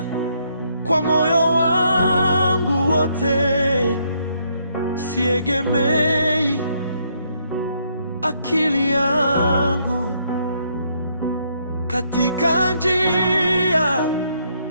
kwa moyo wangu wote, siegemei akili yangu. Katika njia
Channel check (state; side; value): inverted; both; correlation -0.72